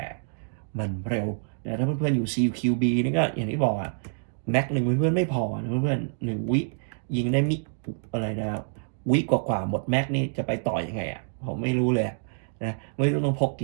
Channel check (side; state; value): left; silent; digital silence